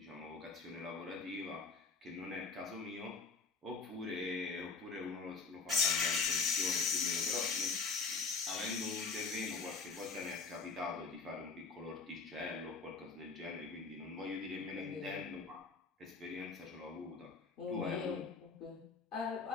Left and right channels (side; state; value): right; quieter; 4.6 dB